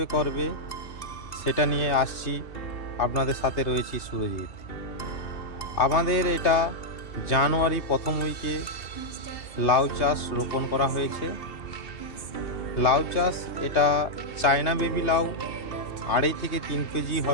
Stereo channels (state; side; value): late; right; 2.8 ms